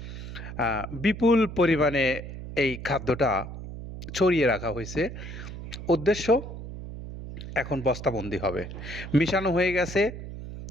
বিপুল পরিমাণে এই খাদ্যটা ছড়িয়ে রাখা হয়েছে। উদ্দেশ্য, এখন বস্তাবন্দি হবে, মিশানো হয়ে গেছে।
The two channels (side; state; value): right; noise; hum, 10 dB below the sound